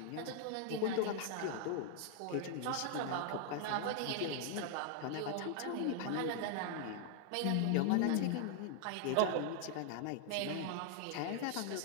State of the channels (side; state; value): both; different; correlation 0.00